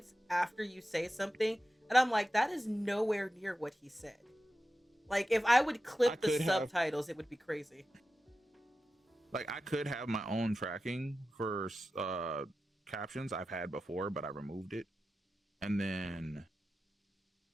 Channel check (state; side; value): normal; both; correlation 0.92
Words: after you say something, and I'm like, that is nowhere near what he said. Like, if I would clip the subtitles, it would be crazy. Like, I could have my own tracking for captions I've had before, but I removed it. And then,